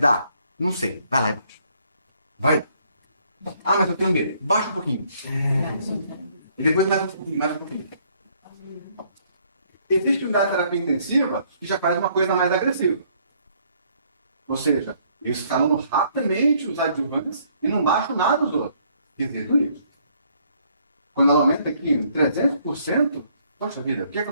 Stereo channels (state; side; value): inverted; both; correlation -0.66